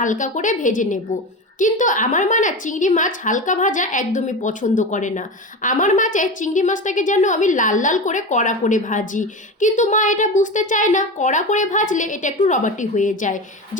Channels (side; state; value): both; normal; correlation 0.25